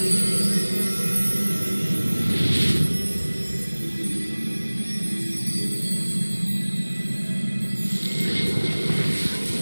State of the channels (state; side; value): inverted; both; correlation -1.00